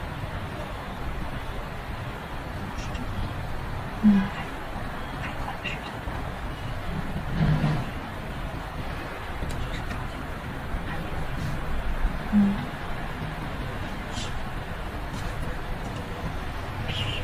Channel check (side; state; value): both; identical; correlation 1.00